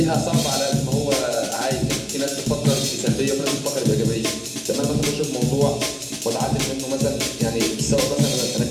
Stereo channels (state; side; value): identical; both; correlation 1.00